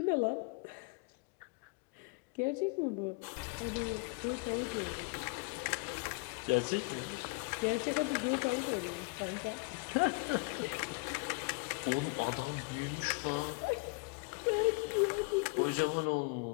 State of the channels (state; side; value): quieter; right; 29.2 dB